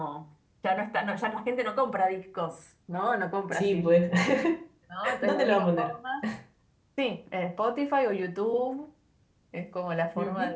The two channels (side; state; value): both; identical; correlation 1.00